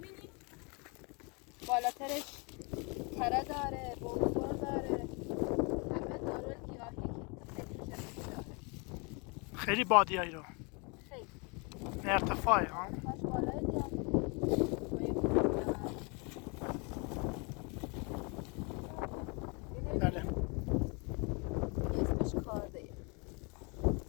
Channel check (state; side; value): quieter; right; 31.8 dB